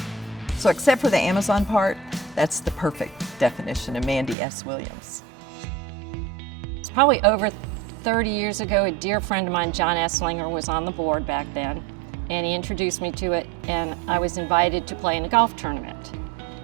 So except for the Amazon part, that's the perfect definition of Mandy S. Williams. It's probably over 30 years ago, a dear friend of mine, John Esslinger, was on the board back then, and he introduced me to it, and I was invited to play in a golf tournament.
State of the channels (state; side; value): drops out; left; at 4.4 s